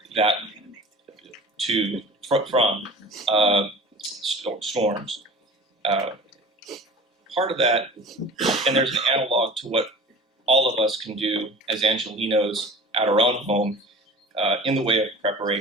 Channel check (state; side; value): normal; both; correlation 0.39